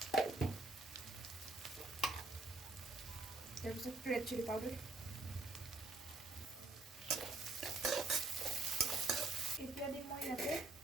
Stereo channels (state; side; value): quieter; left; 3.2 dB